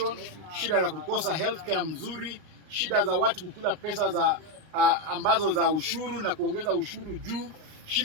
shida za kukosa healthcare mzuri, shida za watu kukula pesa za ambazo za ushuru na kuongeza ushuru juu,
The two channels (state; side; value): late; left; 39 ms